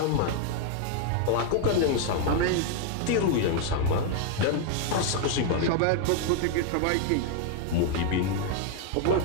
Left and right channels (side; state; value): both; different; correlation 0.00